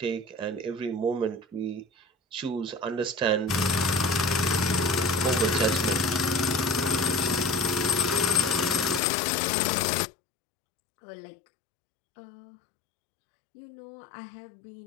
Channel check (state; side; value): drops out; right; at 9.0 s